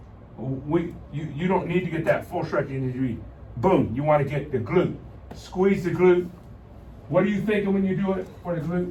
You don't need to get that full stretch. You need to be, boom, you want to get the glute. Squeeze the glute. What are you thinking when you do it for the glute?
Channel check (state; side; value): identical; both; correlation 1.00